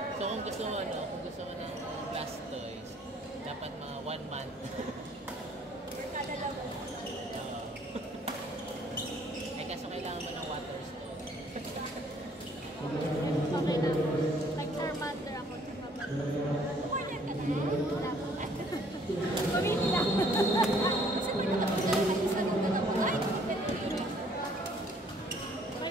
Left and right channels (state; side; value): normal; both; correlation 0.60